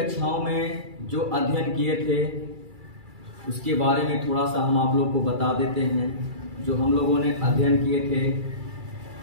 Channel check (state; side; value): late; left; 2.3 ms